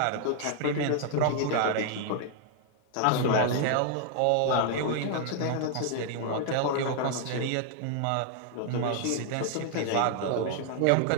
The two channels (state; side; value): different; both; correlation 0.00